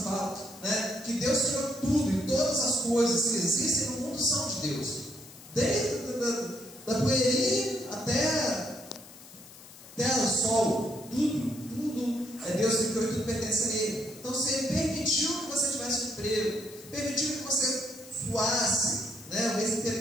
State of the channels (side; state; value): left; noise; hiss, 19 dB below the sound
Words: falam, né, que Deus criou tudo, e todas as coisas que existem no mundo são de Deus, desde da poeirinha até o sol, tudo é Deus que criou e tudo pertence a Ele. Então, se Ele permitiu que você tivesse um emprego, permitiu que você suasse, né, o mês